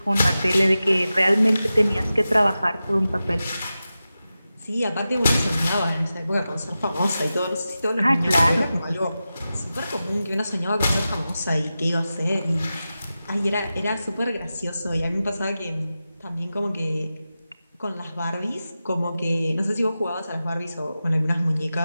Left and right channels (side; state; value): both; inverted; correlation -0.93